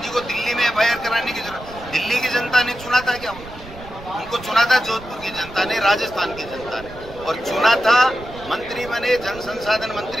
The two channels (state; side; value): noise; right; rumble, 16 dB below the sound